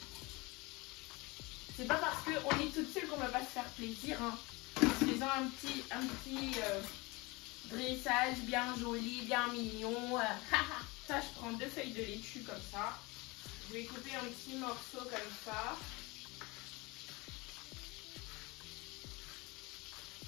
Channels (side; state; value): right; quieter; 24.7 dB